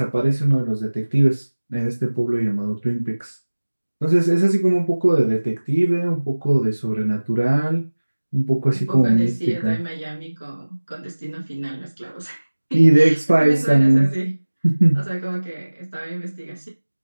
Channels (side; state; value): both; inverted; correlation -1.00